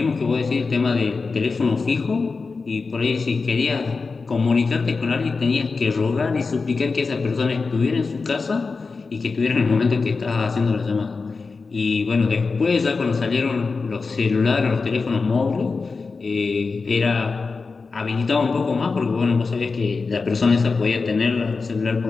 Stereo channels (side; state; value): right; quieter; 4.4 dB